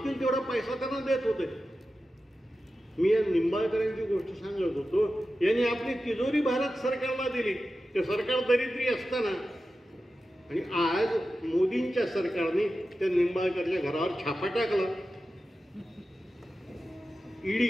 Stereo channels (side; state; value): both; normal; correlation 0.93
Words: तेवढा पैसा त्यांना देत होते. मी या निंबाळकरांची गोष्ट सांगत होतो. यांनी आपली तिजोरी भारत सरकारला दिली. ते सरकार दरिद्री असताना, आणि आज मोदींच्या सरकारने त्या निंबाळकरच्या घरावर छापा टाकला.